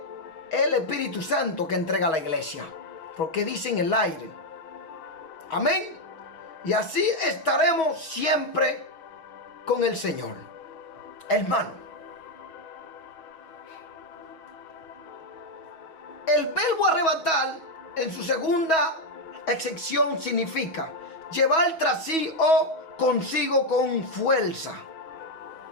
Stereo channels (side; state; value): right; late; 6.2 ms